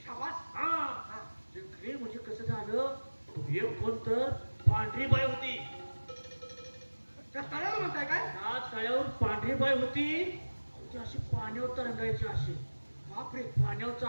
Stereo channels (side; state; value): both; inverted; correlation -1.00